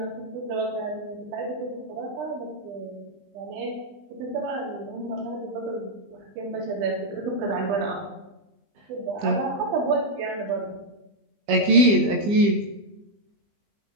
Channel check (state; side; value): late; left; 20 ms